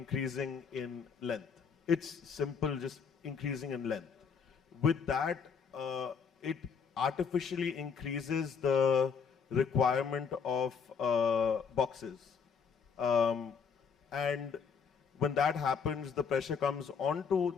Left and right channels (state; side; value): quieter; right; 6.1 dB